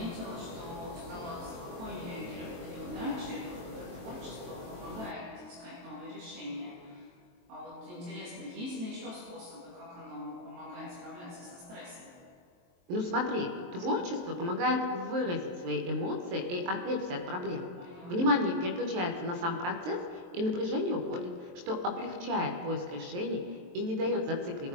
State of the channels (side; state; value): left; late; 23 ms